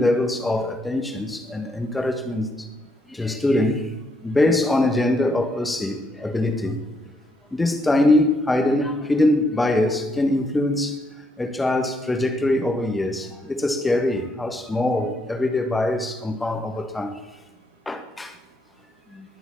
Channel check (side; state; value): both; normal; correlation 0.75